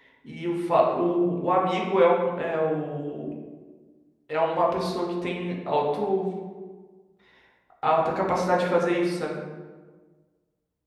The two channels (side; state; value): both; identical; correlation 1.00